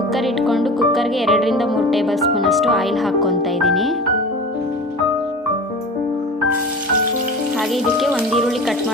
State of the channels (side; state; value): both; normal; correlation 0.35